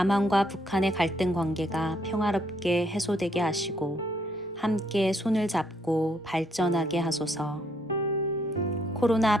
북한의 갈등 관계가 평화롭게 해소되게 하시고 함께 손을 잡고 발전하게 하소서.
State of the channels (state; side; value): normal; both; correlation 0.71